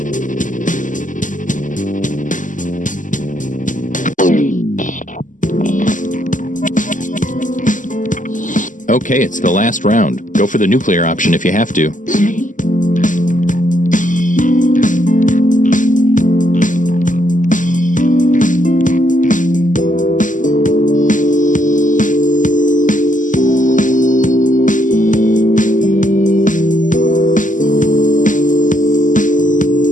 Okay, it's the last round. Go for the nuclear option if you have to.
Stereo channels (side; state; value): right; late; 0.37 ms